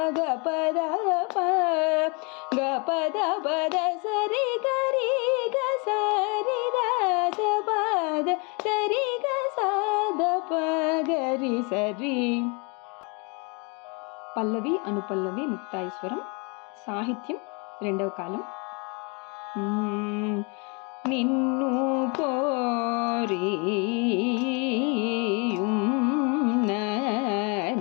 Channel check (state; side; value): quieter; right; 32.4 dB